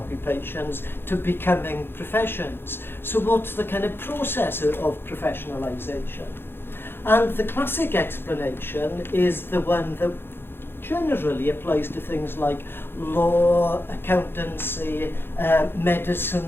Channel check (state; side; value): late; right; 0.10 ms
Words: to becoming professions. So what's the kind of process of professionalisation? And the classic explanation is the one that generally applies to things like law, accountancy, medicine,